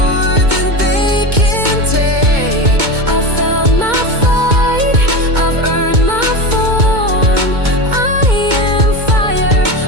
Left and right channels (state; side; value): late; left; 2.2 ms